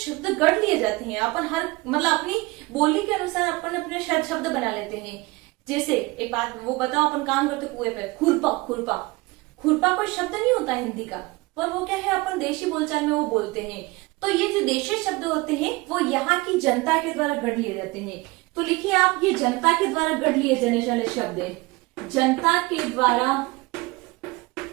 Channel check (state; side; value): quieter; left; 22.9 dB